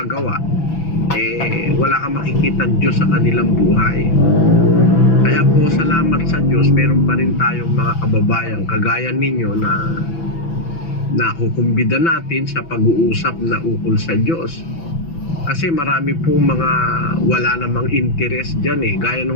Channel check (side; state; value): right; late; 6.0 ms